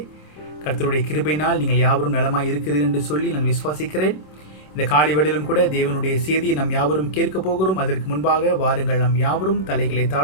கர்த்தருடைய கிருபையினால் நீங்கள் யாவரும் நலமாய் இருக்கிறீர்கள் என்று சொல்லி நான் விசுவாசிக்கிறேன். இந்த காலை வேளையிலும் கூட தேவனுடைய செய்தியை நாம் யாவரும் கேட்க போகிறோம். அதற்கு முன்பாக வாருங்கள், நாம் யாவரும் தலைகளை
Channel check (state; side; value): late; right; 27 ms